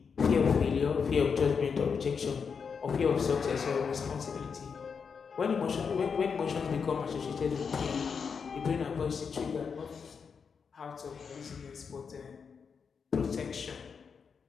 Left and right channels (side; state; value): right; quieter; 6.0 dB